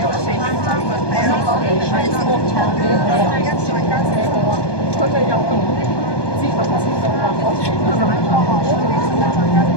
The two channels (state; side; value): late; right; 1.2 ms